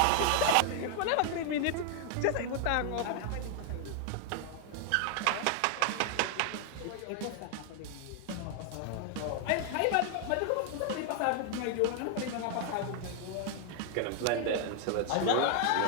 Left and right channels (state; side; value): different; both; correlation 0.00